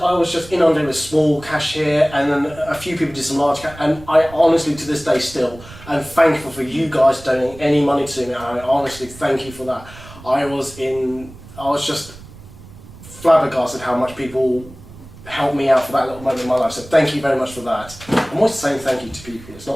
I was just inundated with small cash here, and then a few people did some large cash, and I honestly, to this day still, am thankful for you guys donating any money to me, and I honestly thank you for that. I was just flabbergasted how much people helped me out for that little moment in my life, so thank you very much for that. I'm always saying thank you to people, it's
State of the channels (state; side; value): noise; right; rumble, 18 dB below the sound